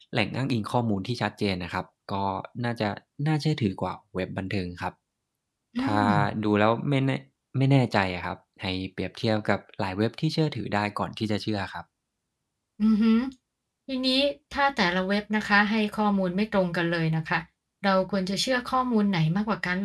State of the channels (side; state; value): both; identical; correlation 1.00